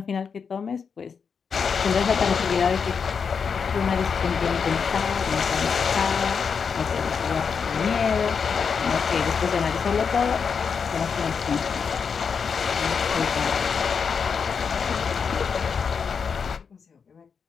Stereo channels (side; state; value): right; quieter; 6.1 dB